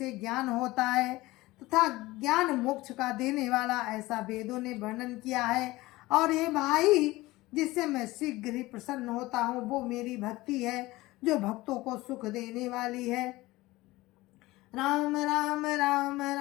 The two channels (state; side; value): quieter; right; 19.3 dB